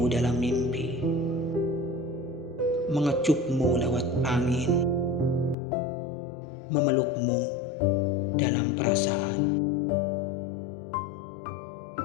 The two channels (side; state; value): right; drops out; at 5.6 s